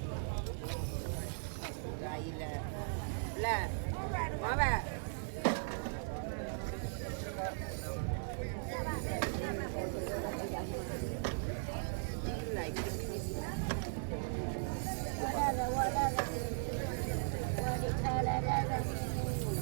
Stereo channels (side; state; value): left; silent; digital silence